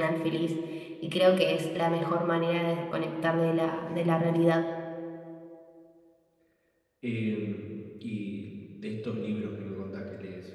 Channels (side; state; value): both; identical; correlation 1.00